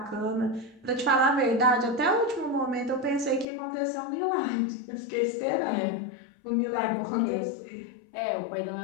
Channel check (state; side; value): drops out; right; at 3.5 s